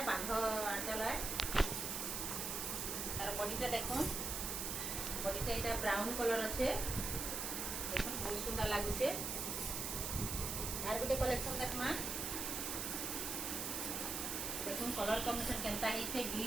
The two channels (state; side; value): noise; right; hiss, 2 dB below the sound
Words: बांध आंचल है तार बॉडीटा देखुन बॉडीटा एटा ब्राउन कलर अच्छे देखुन बहुत सुंदर लागुचे यार गोटे कलेक्शन देखमा देखुन कलर कॉम्बिनेशन केनता ही छे